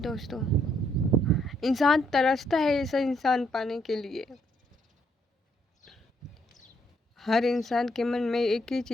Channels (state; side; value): normal; both; correlation 0.72